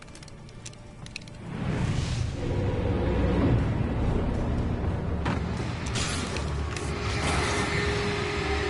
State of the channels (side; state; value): both; identical; correlation 1.00